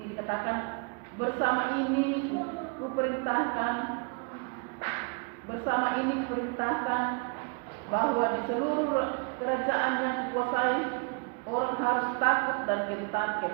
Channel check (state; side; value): quieter; left; 34.4 dB